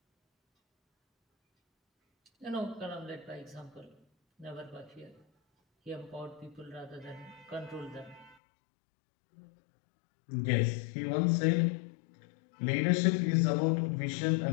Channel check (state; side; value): drops out; right; at 8.3 s